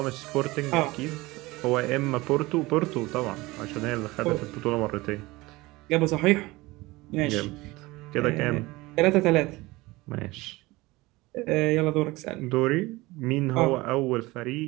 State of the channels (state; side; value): quieter; left; 21.0 dB